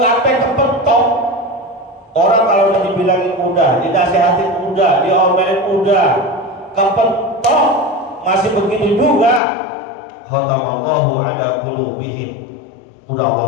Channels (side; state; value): right; drops out; at 9.4 s